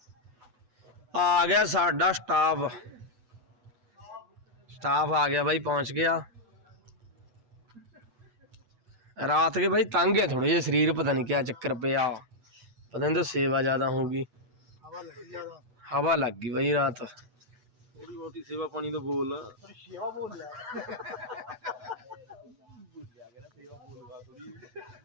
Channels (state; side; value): late; left; 8.1 ms